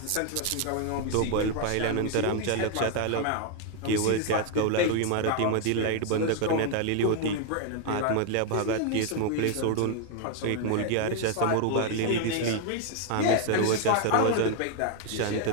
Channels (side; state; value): both; different; correlation 0.00